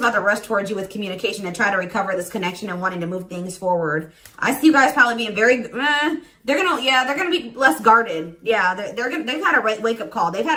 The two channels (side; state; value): both; identical; correlation 1.00